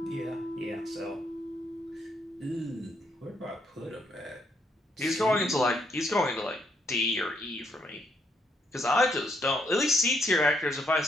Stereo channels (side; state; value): both; normal; correlation 0.74